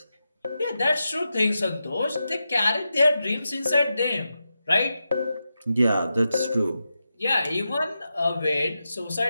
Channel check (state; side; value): inverted; both; correlation -0.89